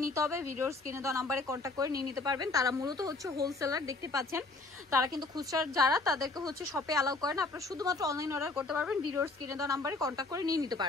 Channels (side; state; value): right; quieter; 3.4 dB